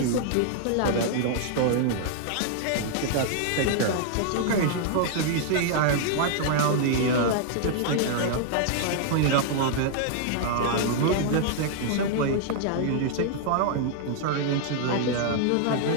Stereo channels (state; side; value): different; both; correlation -0.01